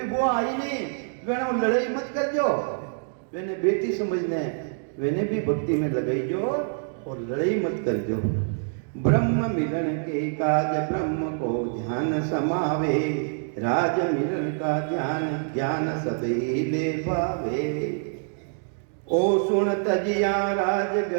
बुआ आई नहीं, वेने लड़ाई मत कर जो, वेने बेटी समझने, वेने भी भक्ति में लगाई जो और लड़ाई मत कर जो। ब्रह्म मिलन के काज ब्रह्म को ध्यान समावे। राज मिलन का ध्यान ज्ञान सभी ले पावे। ओ सुन तजिया राज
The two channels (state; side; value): silent; left; digital silence